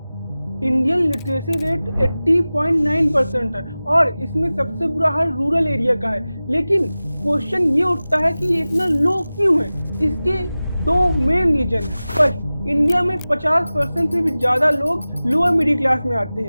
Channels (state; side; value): inverted; both; correlation -0.97